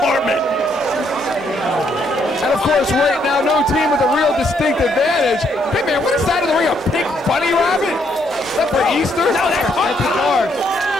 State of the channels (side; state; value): both; normal; correlation 0.72